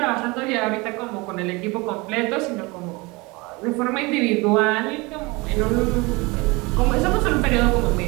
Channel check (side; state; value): left; quieter; 25.1 dB